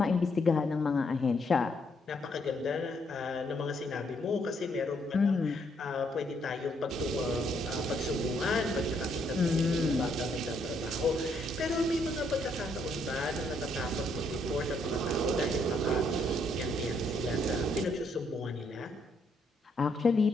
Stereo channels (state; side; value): normal; both; correlation 0.72